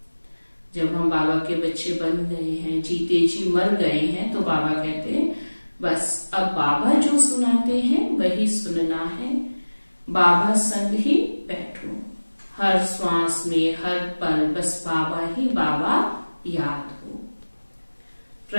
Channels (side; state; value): both; inverted; correlation -1.00